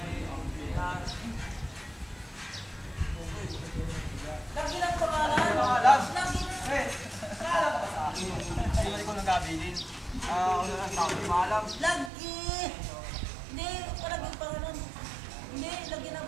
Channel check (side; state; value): left; drops out; at 12.1 s